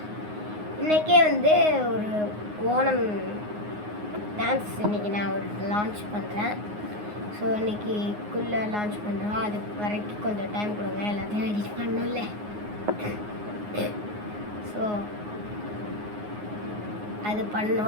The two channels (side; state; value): left; late; 9.6 ms